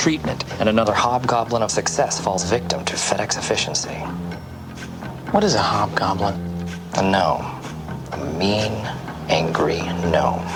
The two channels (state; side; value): identical; both; correlation 1.00